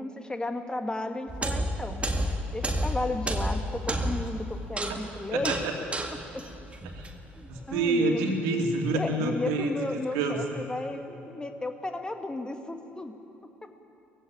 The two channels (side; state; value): both; normal; correlation 0.62